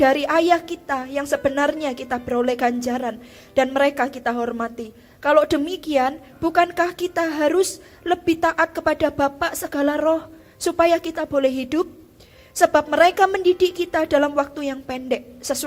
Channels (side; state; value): both; identical; correlation 1.00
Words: ayah kita yang sebenarnya kita beroleh ganjaran dan mereka kita hormati. Kalau demikian, bukankah kita harus lebih taat kepada Bapa segala roh supaya kita boleh hidup? Sebab mereka mendidik kita dalam waktu yang pendek